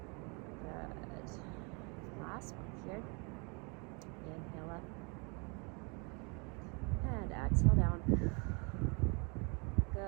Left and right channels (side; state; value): left; quieter; 33.1 dB